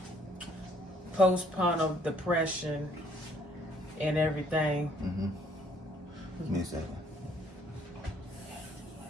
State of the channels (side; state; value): both; normal; correlation 0.64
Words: postpartum depression and everything. Mm-hmm. Give me a second.